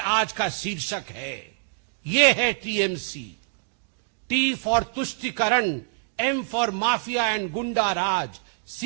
का शीर्षक है। ये है टीएमसी। टी फॉर तुष्टीकरण, एम फॉर माफिया एंड गुंडा राज,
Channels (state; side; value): silent; left; digital silence